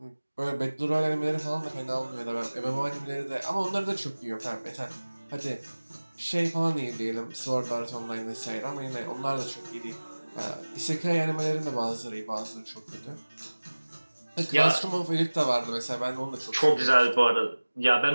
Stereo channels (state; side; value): inverted; both; correlation -1.00